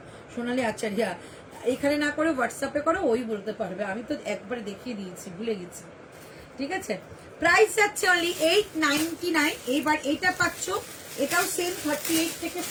সোনালী আচার্যা, এখানে না করে হোয়াটসঅ্যাপে করো, ওই বলতে পারবে, আমি তো একবারে দেখিয়ে দিয়েছি, ভুলে গেছি, ঠিক আছে। প্রাইস যাচ্ছে অনলি 899। এইবার এটা পাচ্ছ, এটাও সেম 38 থেকে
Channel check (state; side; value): identical; both; correlation 1.00